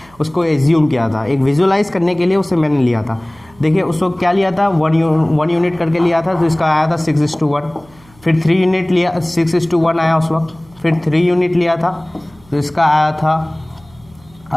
उसको एज्यूम किया था एक विजुअलाइज करने के लिए, उसे मैंने लिया था। देखिए उस वक्त क्या लिया था, 1 यूनिट करके लिया था, तो इसका आया था 6:1। फिर 3 यूनिट लिया, 6:1 आया उस वक्त। फिर 3 यूनिट लिया था तो इसका आया था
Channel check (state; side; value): noise; right; hum, 28 dB below the sound